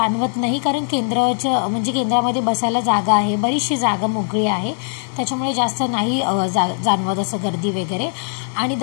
नाही. कारण केंद्रामध्ये बसायला जागा आहे. बरीचशी जागा मोकळी आहे. त्याच्यामुळे जास्त नाही जाणवत असं गर्दी वगैरे. आणि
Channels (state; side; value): silent; right; 66 dB below the other